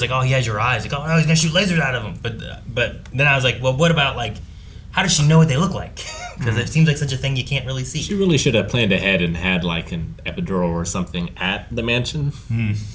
oh, he has your eyes. Like, oh, no, he's gonna shoot lasers out of him. But then I was like, well, what about like, how does she know what they look like? Because it seems like such a thing you can't really see. She really should have planned ahead and had like an epidural or something at the mansion. Ooh,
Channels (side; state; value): both; identical; correlation 1.00